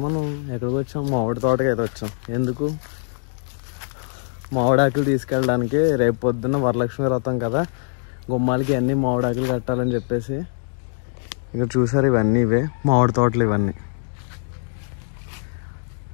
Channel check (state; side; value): silent; right; digital silence